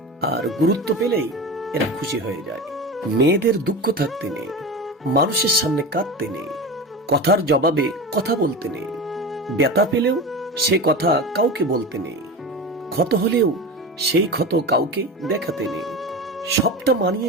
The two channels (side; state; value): both; normal; correlation 0.27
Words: আর গুরুত্ব পেলেই এরা খুশি হয়ে যায়। মেয়েদের দুঃখ থাকতে নেই, মানুষের সামনে কাঁদতে নেই, কথার জবাবে কথা বলতে নেই, ব্যথা পেলেও সে কথা কাউকে বলতে নেই, ক্ষত হলেও সেই ক্ষত কাউকে দেখাতে নেই। সবটা মানিয়ে